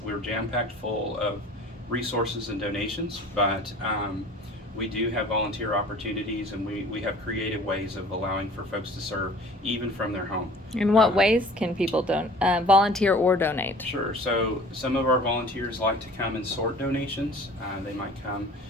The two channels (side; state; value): both; normal; correlation 0.47